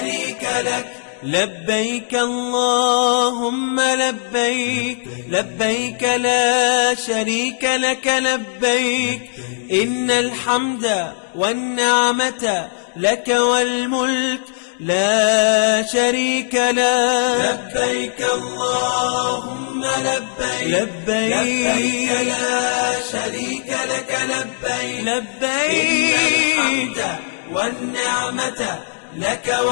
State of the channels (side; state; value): right; silent; 62 dB below the other